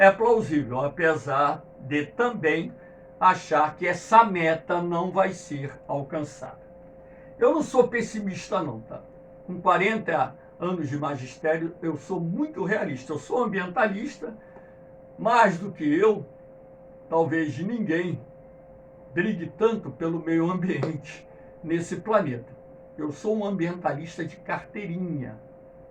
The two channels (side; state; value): both; identical; correlation 1.00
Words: plausível, apesar de também achar que essa meta não vai ser alcançada. Eu não sou pessimista não, tá? Com 40 anos de magistério, eu sou muito realista. Eu sou ambientalista, mais do que eu, talvez ninguém brigue tanto pelo meio ambiente nesse planeta. Eu sou um ambientalista de carteirinha